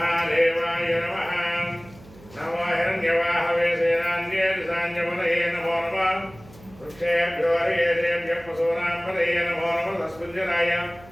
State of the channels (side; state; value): right; noise; hum, 22 dB below the sound